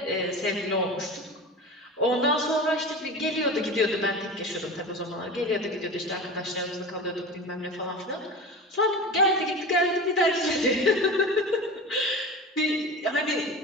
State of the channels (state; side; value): normal; both; correlation 0.31